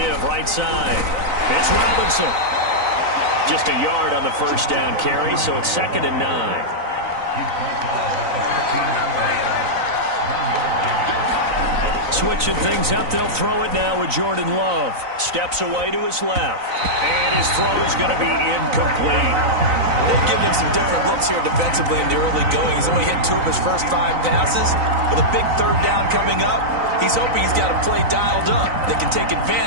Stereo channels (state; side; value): late; left; 3.9 ms